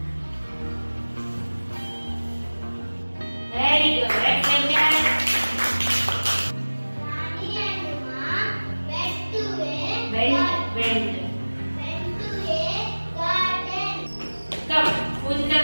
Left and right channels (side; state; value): both; inverted; correlation -1.00